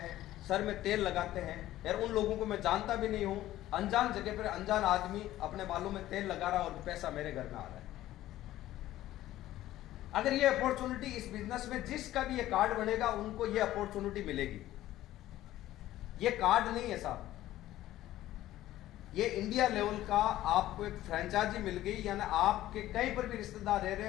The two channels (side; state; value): right; quieter; 14.5 dB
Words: सर में तेल लगाते हैं। यार उन लोगों को मैं जानता भी नहीं हूं, अनजान जगह पर अनजान आदमी अपने बालों में तेल लगा रहा और पैसा मेरे घर में आ रहा है। अगर ये अपॉर्चुनिटी इस बिजनेस में जिसका भी ये कार्ड बनेगा उनको ये अपॉर्चुनिटी मिलेगी। ये कार्ड नहीं है साहब, ये इंडिया लेवल का आपको एक फ्रेंचाइजी मिल गई, यानी आपके कहीं पर भी रिश्तेदार रह रहे